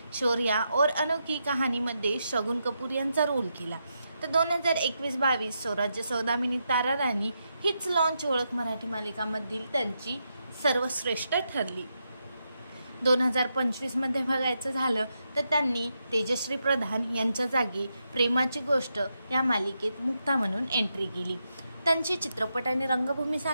शौर्या और अनोखी कहाणीमध्ये शगुन कपूर यांचा रोल केला। तर 2021-22 स्वराज्य सौदामिनी तारा राणी हीच लॉन्च ओळख मराठी मालिकांमधील त्यांची सर्वश्रेष्ठ ठरली। 2025 मध्ये बघायचं झालं तर त्यांनी तेजश्री प्रधान यांच्या जागी प्रेमाची गोष्ट या मालिकेत मुक्ता म्हणून एंट्री केली। त्यांची चित्रपट आणि रंगभूमी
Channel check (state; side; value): inverted; both; correlation -0.84